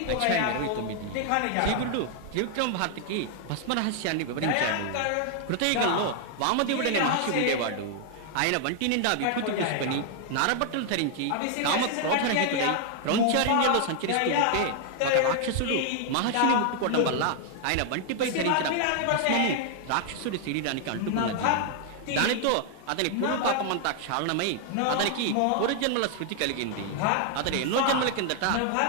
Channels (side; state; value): both; different; correlation 0.00